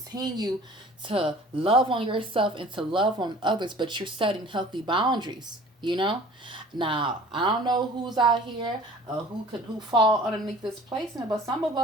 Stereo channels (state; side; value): normal; both; correlation 0.47